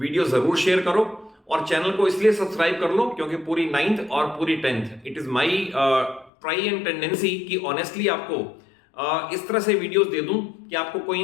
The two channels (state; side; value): drops out; right; at 6.3 s